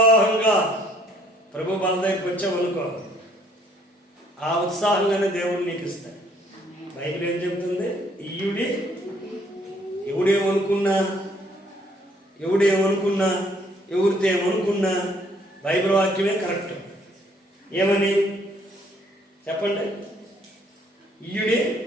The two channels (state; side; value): normal; both; correlation 0.64